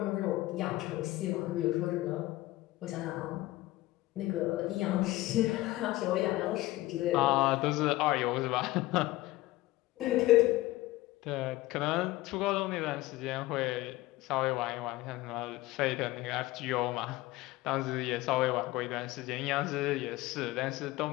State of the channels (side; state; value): right; quieter; 18.1 dB